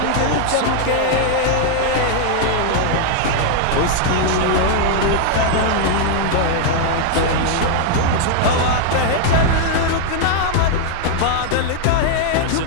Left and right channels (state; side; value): different; both; correlation 0.00